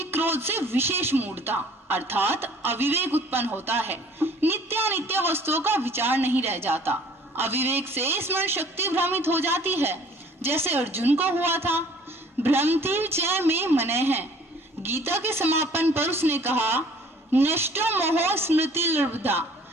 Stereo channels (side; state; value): both; normal; correlation 0.54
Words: क्रोध से विशेष मूढ़ता अर्थात अविवेक उत्पन्न होता है। नित्यानित्य वस्तुओं का विचार नहीं रह जाता। अविवेक से स्मरण शक्ति भ्रमित हो जाती है, जैसे अर्जुन को हुआ था। भ्रमति च में मने है। गीता के समापन पर उसने कहा, नष्टो मोह स्मृति लब्धा।